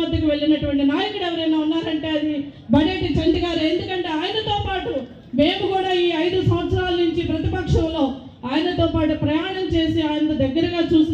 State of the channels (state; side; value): identical; both; correlation 1.00